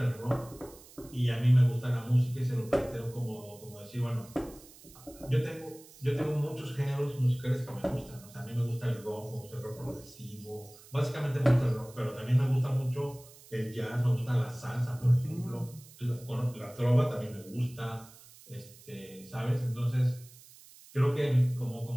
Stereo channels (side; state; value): right; noise; hiss, 22 dB below the sound